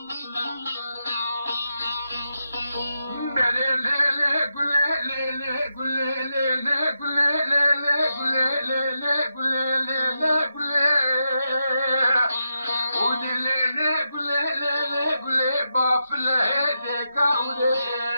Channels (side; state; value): both; inverted; correlation -0.86